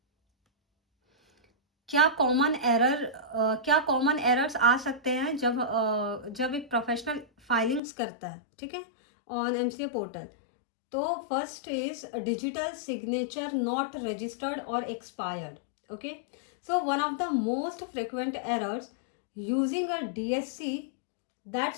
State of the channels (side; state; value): right; drops out; at 7.8 s